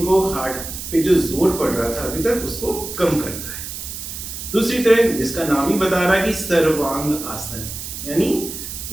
को, हार्ट पे जो जोर पड़ रहा था अभी तक, उसको कम करता है। दूसरी तरह, जिसका नाम ही बता रहा है कि सर्वांग आसन, यानी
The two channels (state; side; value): noise; right; hiss, 8 dB below the sound